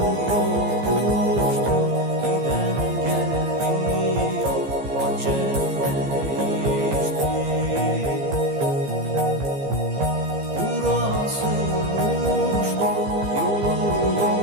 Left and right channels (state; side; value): late; left; 15 ms